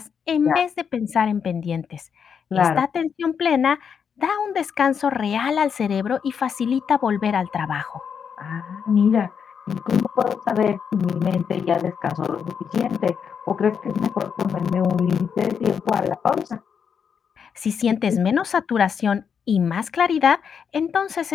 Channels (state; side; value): quieter; right; 7.0 dB